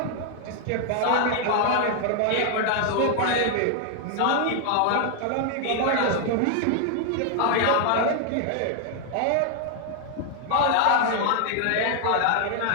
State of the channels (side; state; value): both; different; correlation 0.00